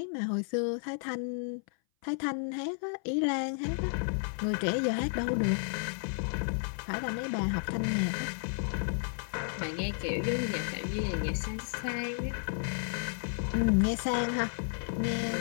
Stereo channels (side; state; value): right; silent; 56 dB below the other